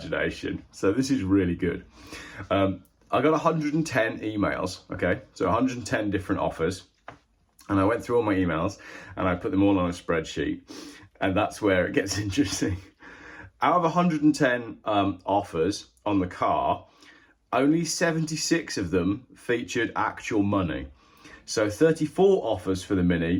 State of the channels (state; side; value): identical; both; correlation 1.00